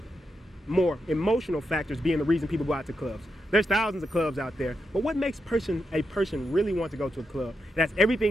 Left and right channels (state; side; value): normal; both; correlation 0.85